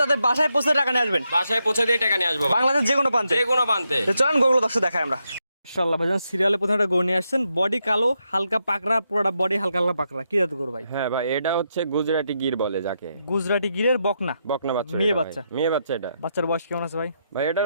তাদের বাসায় পৌঁছে টাকা নিয়ে আসবেন। বাসায় পৌঁছে দিয়ে টাকা নিয়ে আসবো ভাই। বাংলাদেশের যে কোনো প্রান্তে? যে কোনো প্রান্তে। তো চলেন গরুগুলো দর্শক দেখাই আমরা। মাশাআল্লাহ ভাইজান, সিরিয়ালে প্রথমে একটা গরু নিয়ে আসছেন, বডি কালো, হালকা পাকড়া, পুরোটা বডি হালকা হালকা পাকড়া। কি জাত গরু ভাই? হ্যাঁ ভাই, এটা হচ্ছে গুজরাটি গির বলে যাকে। গুজরাটি গিরের বকনা? বকনা বাচ্চা। মেয়ে এটা ভাই। বাচ্চা? মেয়ে বাচ্চা এটা। বাচ্চার বয়স কেমন আছে ভাই? ভাই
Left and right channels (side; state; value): both; inverted; correlation -0.82